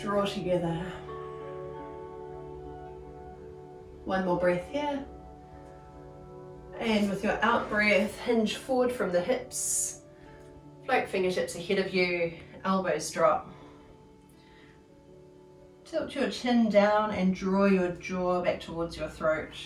together. One more breath here. And with your out breath, hinge forward from the hips. Float fingertips ahead of you, elbows drop. Tilt your chin down and draw your jaw back towards your throat.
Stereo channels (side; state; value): both; identical; correlation 1.00